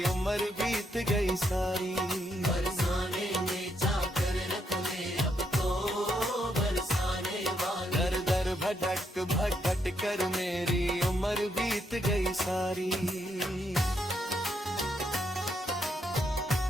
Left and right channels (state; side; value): normal; both; correlation 0.77